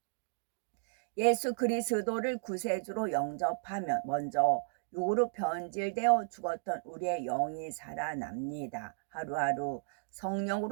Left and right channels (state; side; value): silent; left; digital silence